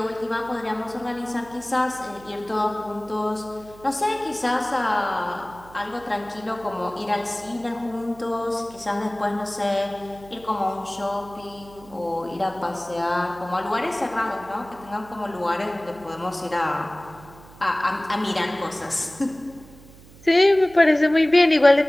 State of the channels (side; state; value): right; noise; hum, 22 dB below the sound